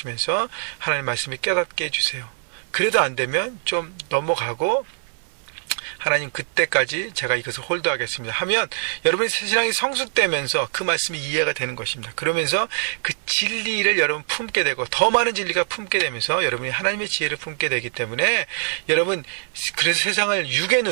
하나님 말씀을 깨닫게 해주세요. 그래도 안 되면 좀 넘어가고 하나님 그때까지 제가 이것을 홀드하겠습니다 하면 여러분의 신앙이 성숙되면서 그 말씀이 이해가 되는 것입니다. 그러면서 그 진리를 여러분 품게 되고 더 많은 진리가 품게 되면서 여러분이 하나님의 지혜를 품게 되기 때문에, 여러분 그래서 세상을 육의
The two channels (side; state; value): left; silent; 58 dB below the other